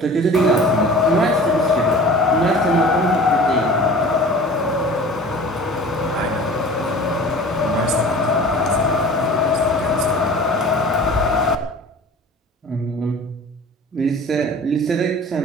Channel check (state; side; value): normal; both; correlation 0.42